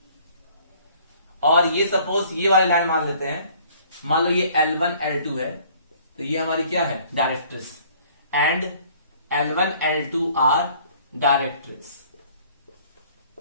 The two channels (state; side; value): inverted; both; correlation -0.56